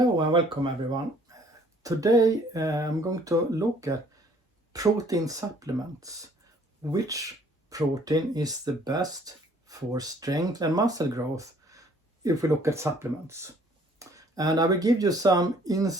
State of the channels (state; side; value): normal; both; correlation 0.59